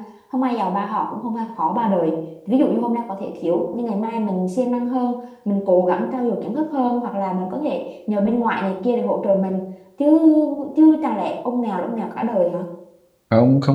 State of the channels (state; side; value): identical; both; correlation 1.00